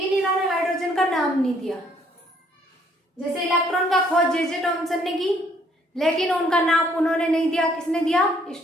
इन्होंने हाइड्रोजन का नाम नहीं दिया। जैसे इलेक्ट्रॉन का खोज जे थॉमसन ने की, लेकिन उनका नाम उन्होंने नहीं दिया। किसने दिया?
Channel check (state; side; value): normal; both; correlation 0.65